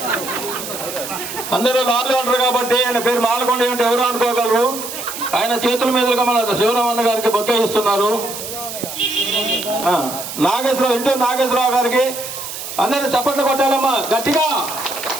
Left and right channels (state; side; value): noise; right; hiss, 8 dB below the sound